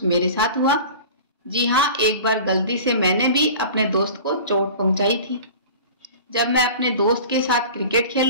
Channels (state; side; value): inverted; both; correlation -0.38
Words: मेरे साथ हुआ। जी हाँ, एक बार गलती से मैंने भी अपने दोस्त को चोट पहुंचाई थी। जब मैं अपने दोस्त के साथ क्रिकेट